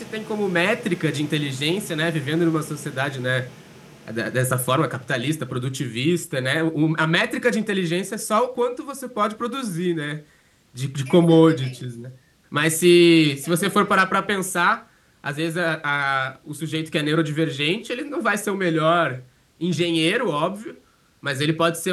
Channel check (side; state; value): both; identical; correlation 1.00